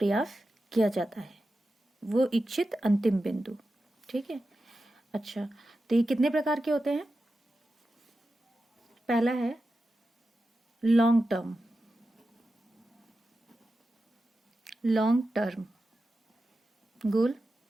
किया जाता है, वो इच्छित अंतिम बिंदु। ठीक है। अच्छा, तो ये कितने प्रकार के होते हैं? पहला है लॉन्ग टर्म। लॉन्ग टर्म गोल।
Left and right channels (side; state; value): both; normal; correlation 0.91